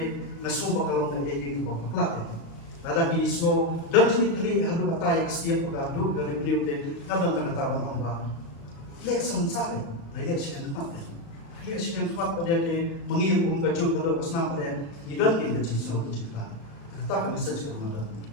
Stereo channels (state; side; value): late; right; 36 ms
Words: ngaso bakalong na egi baklak. Ada ki ismo dan jenis kali hadu kata yang setiap pagadu dari beliau de ngadon tangataban ong ba. Le samsale na ye siyan tumat. Le siyan tumat pada ke mengilum kacau pada pasna pada idan ke jenis so cerita. Kata kami saja kepada